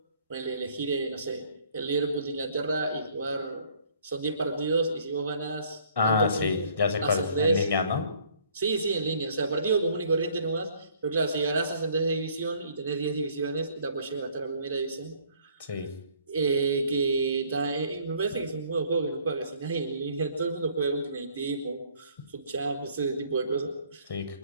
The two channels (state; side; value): inverted; both; correlation -0.60